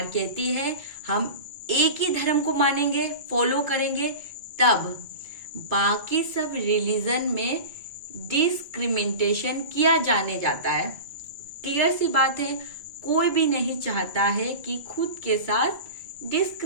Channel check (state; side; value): late; left; 2.3 ms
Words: कहती है हम एक ही धर्म को मानेंगे, फॉलो करेंगे, तब बाकी सब रिलीजन में डिस्क्रिमिनेशन किया जाने जाता है। क्लियर सी बात है, कोई भी नहीं चाहता है कि खुद के साथ